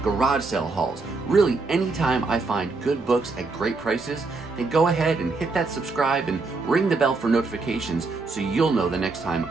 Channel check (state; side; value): quieter; left; 3.9 dB